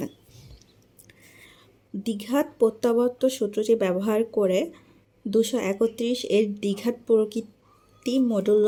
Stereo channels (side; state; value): both; identical; correlation 1.00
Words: দ্বিঘাত প্রত্যাবর্ত সূত্রটি ব্যবহার করে 231 এর দ্বিঘাত প্রকৃতি